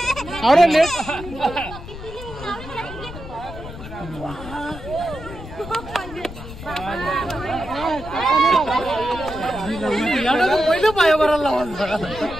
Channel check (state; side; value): noise; left; rumble, 12 dB below the sound